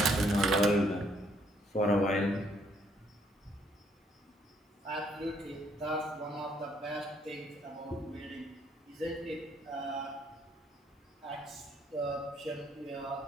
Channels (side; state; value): both; normal; correlation 0.68